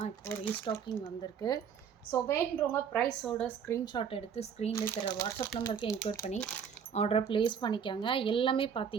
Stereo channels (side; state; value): left; quieter; 7.3 dB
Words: இப்போ ரீஸ்டாக்கிங் வந்திருக்கு. ஸோ வேணுன்றவங்க ப்ரைஸோட ஸ்க்ரீன்ஷாட் எடுத்து ஸ்க்ரீனில் தர வாட்ஸ்அப் நம்பருக்கு என்கொயர் பண்ணி ஆர்டரை ப்ளேஸ் பண்ணிக்காங்க. எல்லாமே